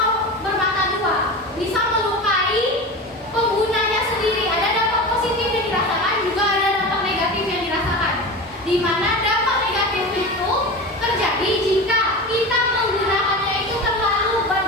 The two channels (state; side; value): normal; both; correlation 0.28